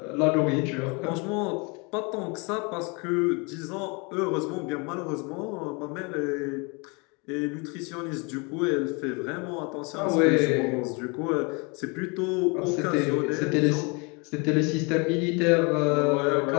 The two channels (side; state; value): right; quieter; 30.6 dB